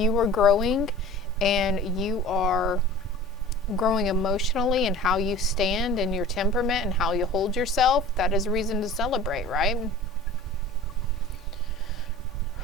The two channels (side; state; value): both; normal; correlation 0.41